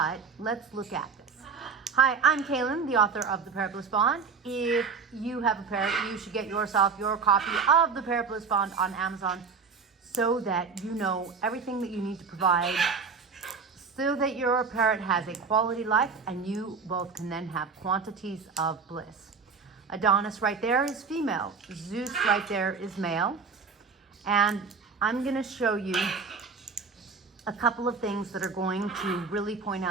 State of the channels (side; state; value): left; quieter; 5.2 dB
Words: let's look at this. Hi, I'm Kaylin, the author of the Parrot Bliss Bond. If you have a parrot, you should get yourself your copy of the Parrot Bliss Bond on Amazon so that you know everything that you need to provide so that your parrot has a quality life and you both can then have quantities of bliss. Adonis right there is female. Zeus right there is male. And I'm going to show you a couple of things that are going to really point